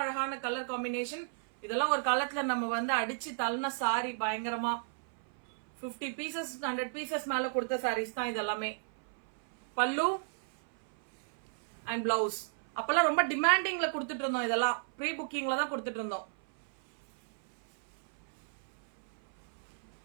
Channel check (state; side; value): silent; left; 56 dB below the other